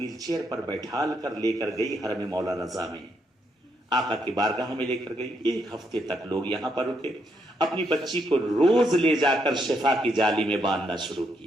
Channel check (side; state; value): both; normal; correlation 0.77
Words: چیئر پر بیٹھال کر لے کر گئی حرم مولا رضا میں، آقا کی بارگاہ میں لے کر گئی۔ 1 ہفتے تک لوگ یہاں پر رکے، اپنی بچی کو روز لے جا کر شفا کی جالی میں باندھنا شروع